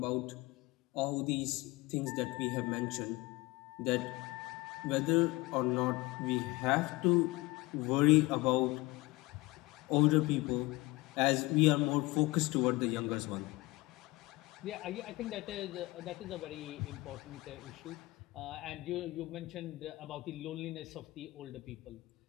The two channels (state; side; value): quieter; right; 21.5 dB